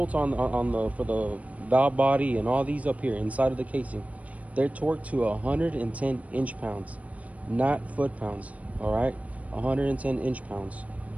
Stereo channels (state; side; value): late; left; 0.068 ms